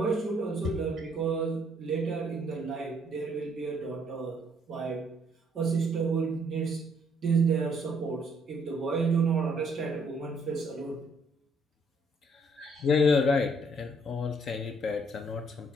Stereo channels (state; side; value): normal; both; correlation 0.67